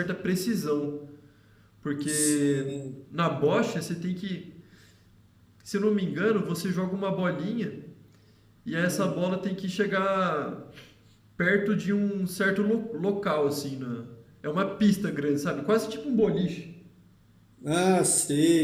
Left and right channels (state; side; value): identical; both; correlation 1.00